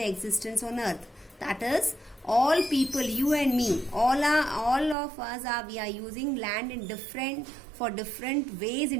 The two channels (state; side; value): drops out; left; at 5.0 s